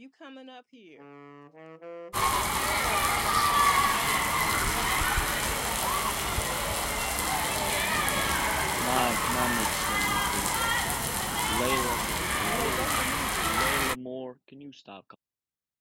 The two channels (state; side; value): identical; both; correlation 1.00